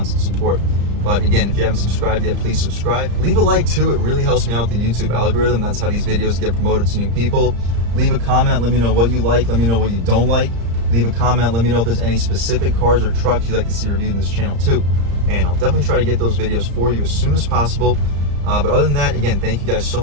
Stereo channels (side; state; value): left; late; 35 ms